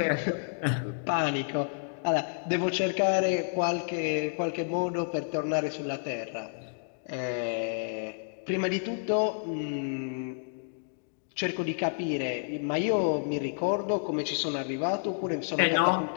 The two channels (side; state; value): right; silent; digital silence